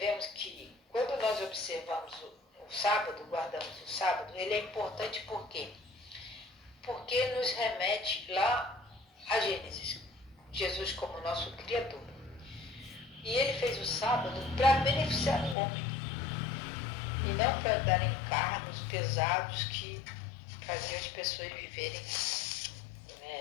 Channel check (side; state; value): right; drops out; at 15.6 s